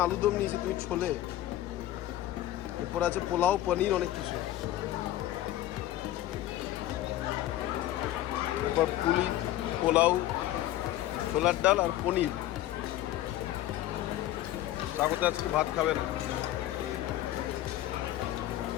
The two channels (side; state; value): right; quieter; 14.1 dB